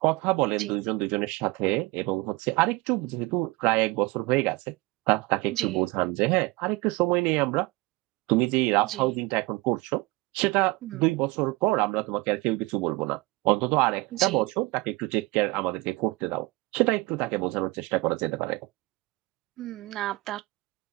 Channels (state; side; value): quieter; left; 22.9 dB